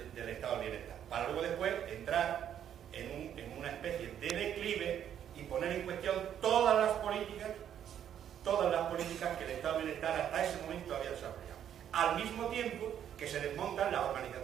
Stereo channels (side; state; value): left; quieter; 9.7 dB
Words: estado del bienestar, para luego después entrar en una especie de declive y poner en cuestión todas las políticas que el estado del bienestar hasta ese momento había desarrollado. Al mismo tiempo que se desmontan las